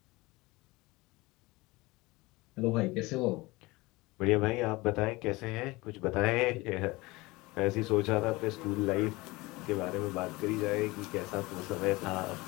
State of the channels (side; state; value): right; quieter; 22.1 dB